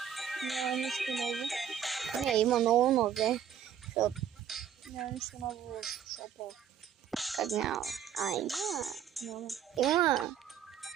Няма нищо ново. Не, има много нови. Няма нищо ново в шопа. Как няма? Няма. Има.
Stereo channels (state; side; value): quieter; left; 9.0 dB